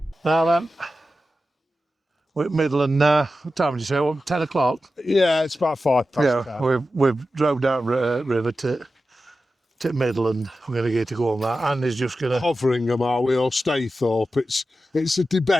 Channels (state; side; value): normal; both; correlation 0.92